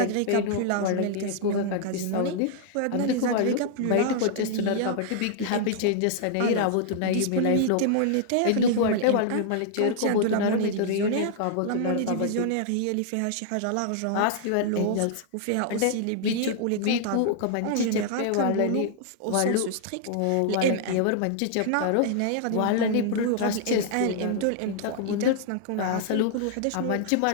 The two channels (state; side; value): different; both; correlation -0.01